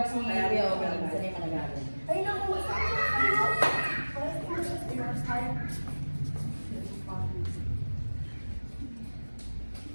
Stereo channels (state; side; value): inverted; both; correlation -1.00